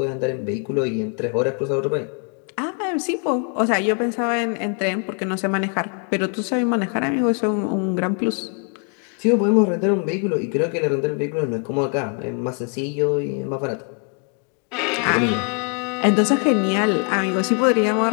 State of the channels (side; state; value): right; quieter; 39.9 dB